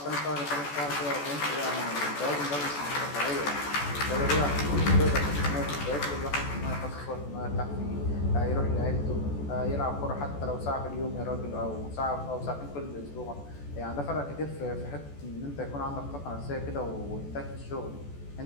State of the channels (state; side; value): late; right; 14 ms